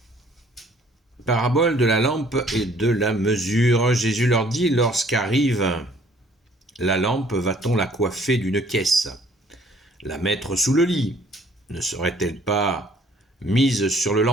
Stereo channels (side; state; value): both; normal; correlation 0.59